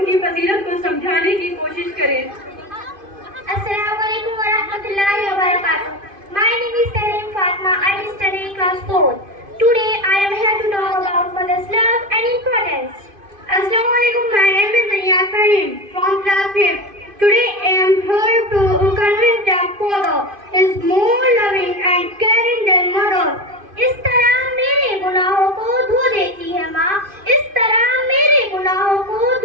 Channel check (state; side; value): late; left; 2.5 ms